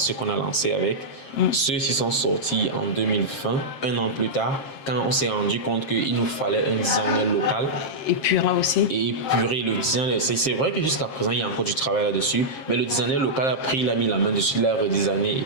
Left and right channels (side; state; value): right; late; 7.5 ms